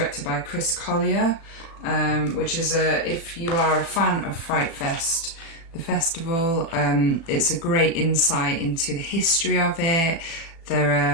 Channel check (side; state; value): right; late; 36 ms